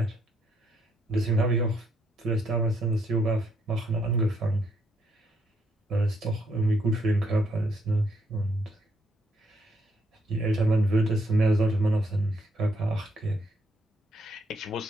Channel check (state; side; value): normal; both; correlation 0.74